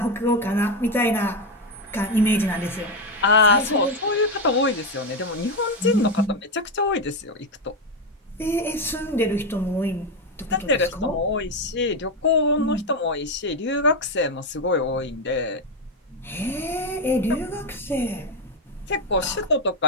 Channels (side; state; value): both; normal; correlation 0.09